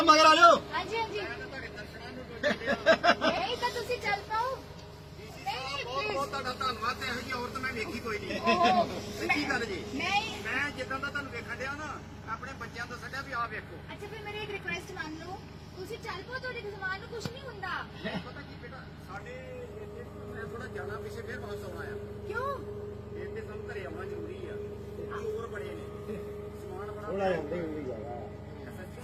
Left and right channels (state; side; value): identical; both; correlation 1.00